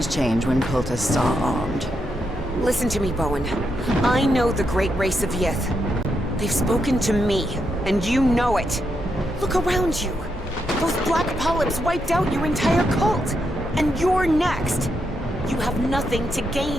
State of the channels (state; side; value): normal; both; correlation 0.82